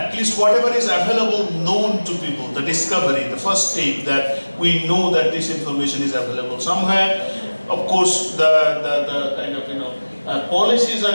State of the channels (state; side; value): inverted; both; correlation -1.00